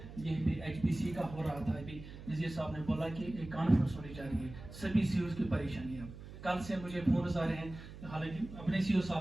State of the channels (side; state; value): right; noise; hum, 14 dB below the sound